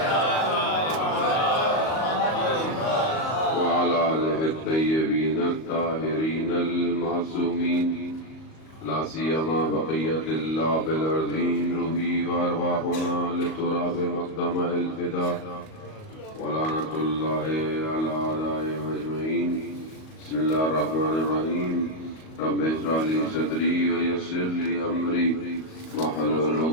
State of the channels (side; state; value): right; late; 38 ms